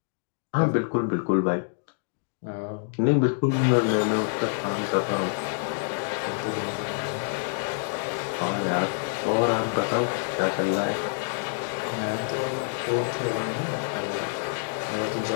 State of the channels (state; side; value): silent; right; digital silence